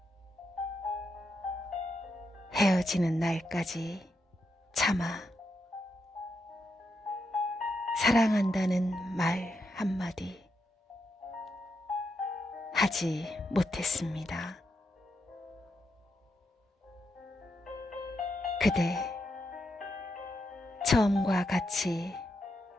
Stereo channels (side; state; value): both; normal; correlation 0.83